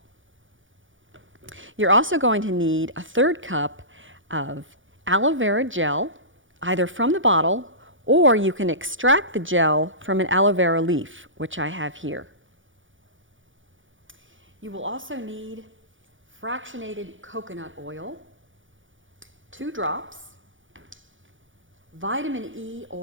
You're also going to need a 1/3 cup of aloe vera gel, either from the bottle or you can extract the gel from an aloe vera leaf, which I have here. You will also need fractionated coconut oil, 2 drops, vitamin E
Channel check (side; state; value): left; late; 0.57 ms